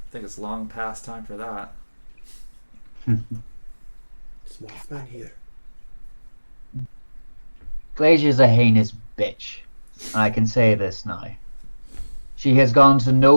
think it's long past time for that. Small man here. Glacier's a heinous bitch, and I can say this now. She has gone to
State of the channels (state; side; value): inverted; both; correlation -1.00